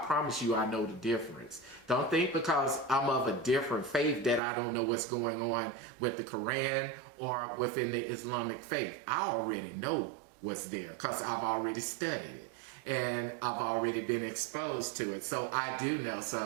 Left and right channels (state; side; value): drops out; left; at 4.4 s